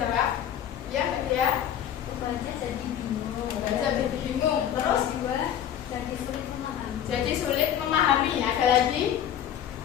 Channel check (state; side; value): quieter; right; 10.0 dB